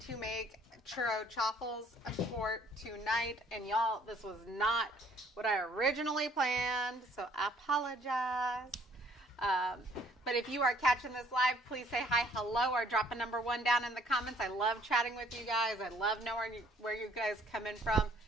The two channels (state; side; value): normal; both; correlation 0.61